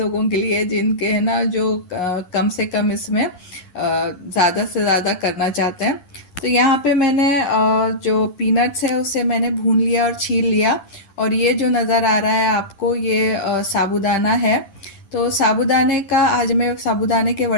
के लिए, जिनके है ना जो कम से कम इसमें ज़्यादा से ज़्यादा करना चाहते हैं। तो यहाँ पे मैंने जो पीनट्स है उसे मैंने भून लिया और छील लिया, और ये जो नज़र आ रहा है आपको ये साबूदाना है। तो साबूदाने का आज मैं साबूदाने के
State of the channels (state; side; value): late; right; 11 ms